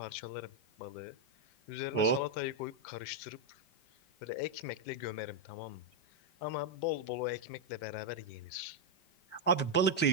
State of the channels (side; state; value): right; late; 5.1 ms